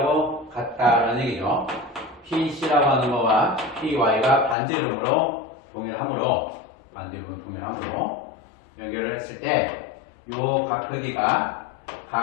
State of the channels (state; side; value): drops out; right; at 4.5 s